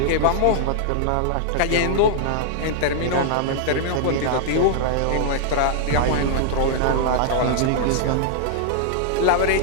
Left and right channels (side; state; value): both; different; correlation -0.01